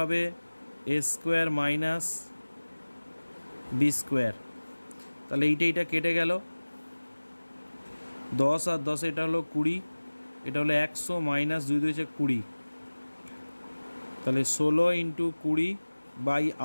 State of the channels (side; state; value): both; inverted; correlation -1.00